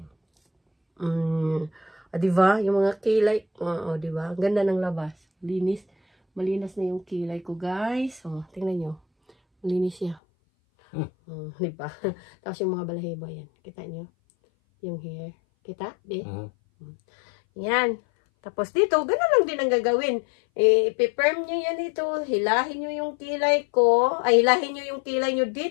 Diba? Yung mga kilay. Diba? Ang ganda ng labas. Linis. Malinis na yung kilay ko, guys. Tingnan nyo. Malinis siya. Diba? Tapos yung mga balahibo yan. Kita nyo? Yung hair. Kita? Di? Yan. Tapos dito, gano'n lang din ang gagawin. Ipi-firm nyo yan dito. Hilahin nyo yung kilay ko. Ay, hilahin nyo yung kilay nyo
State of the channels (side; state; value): right; drops out; at 10.2 s